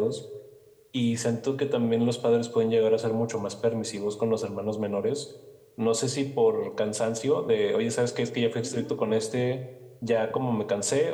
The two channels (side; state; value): both; identical; correlation 1.00